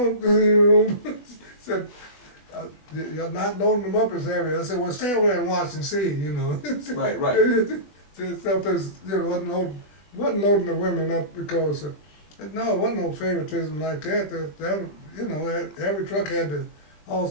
you know, said, you're not loading them up as heavy. I said, well, stay over there and watch and see, you know. Right. Sometimes, you know, wasn't loading the women up because, no, it wasn't no favoritism like that. That you know, every truck had to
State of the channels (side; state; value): right; late; 20 ms